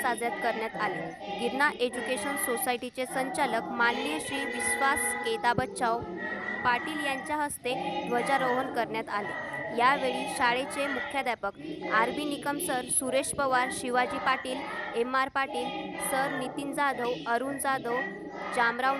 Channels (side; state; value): both; identical; correlation 1.00